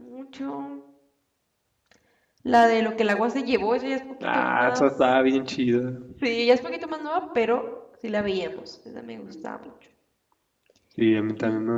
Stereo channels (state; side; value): identical; both; correlation 1.00